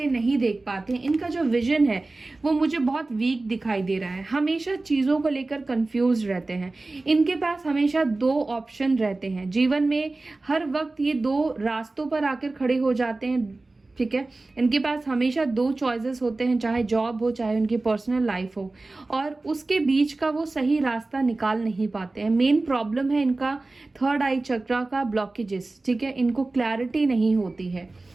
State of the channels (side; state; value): left; quieter; 3.2 dB